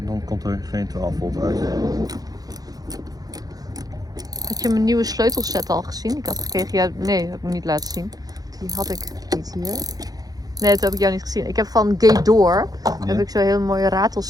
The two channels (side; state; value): left; late; 0.18 ms